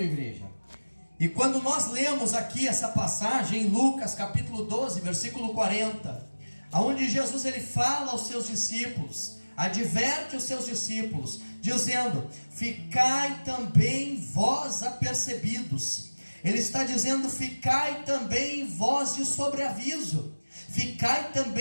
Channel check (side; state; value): both; inverted; correlation -1.00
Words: igreja. E quando nós lemos aqui essa passagem em Lucas capítulo 12, versículo 40, aonde Jesus ele fala aos seus discípulos, adverte os seus discípulos, dizendo: ficai também vós apercebidos. Ele está dizendo: ficai também vós de sobreaviso, ficai